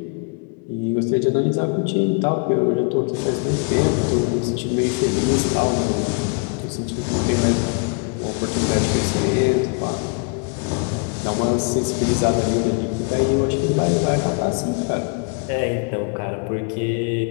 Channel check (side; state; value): right; quieter; 37.0 dB